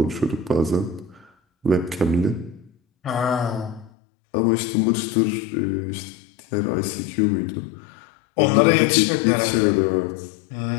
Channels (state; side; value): drops out; right; at 3.9 s